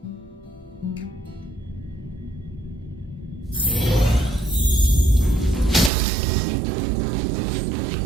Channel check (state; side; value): drops out; left; at 5.9 s